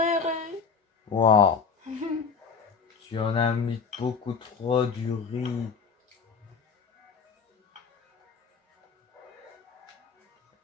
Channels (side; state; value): right; quieter; 5.8 dB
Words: Waouh. Tu en as mis beaucoup trop du riz.